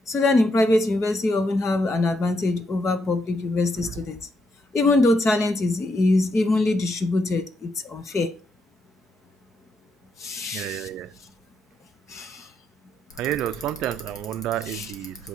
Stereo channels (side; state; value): both; normal; correlation 0.78